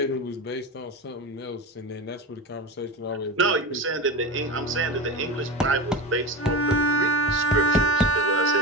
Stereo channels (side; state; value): both; normal; correlation 0.25